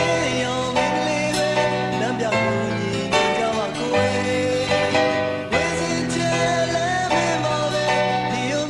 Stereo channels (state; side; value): identical; both; correlation 1.00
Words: းရောမင်းကလေးပဲလမ်းပြကိုညီညွတ်ကြပါကိုယ်ဝေစင်ချဲလဲမင်းပါပဲဒီယုံ